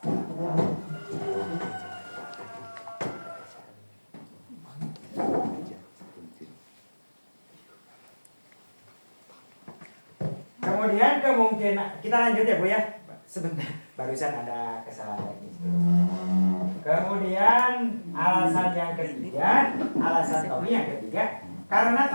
Kemudian kemungkinan kita lanjut ya Bu ya. Sebentar, barusan ada kesalahan teknis. Kemudian alasan yang ketiga, alasan Tommy yang ketiga, karena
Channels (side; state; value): both; inverted; correlation -1.00